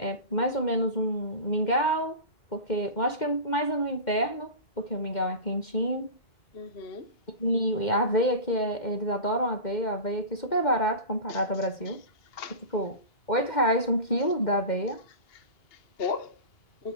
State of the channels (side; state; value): right; late; 2.1 ms